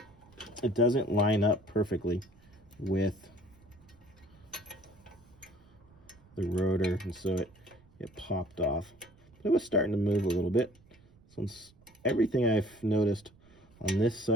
doesn't line up perfectly with the rotor, and so it popped off. But it was starting to move a little bit. Since everything I've noticed on this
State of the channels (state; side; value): noise; right; rumble, 27 dB below the sound